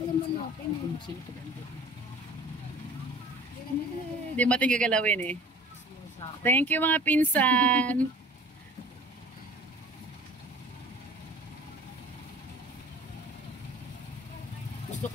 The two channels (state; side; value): normal; both; correlation 0.46